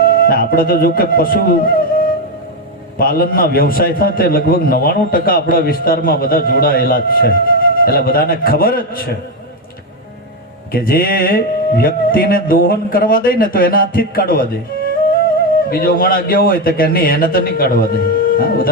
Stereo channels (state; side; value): normal; both; correlation 0.08